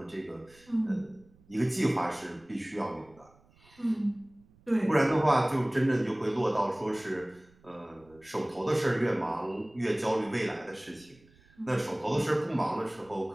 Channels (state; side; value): noise; right; rumble, 29 dB below the sound